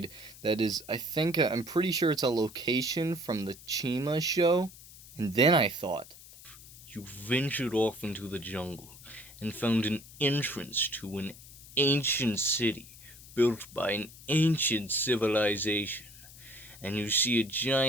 that is, I'm pretty sure it's a location from the Chima show. And then I thought, You ventured off into the jungle and found an entrance to an ancient city built by an ancient civilization, and you see a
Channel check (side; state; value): left; noise; hiss, 19 dB below the sound